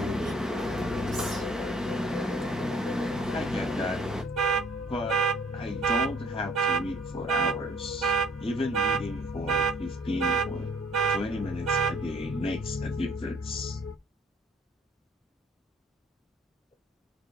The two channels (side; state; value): both; normal; correlation 0.57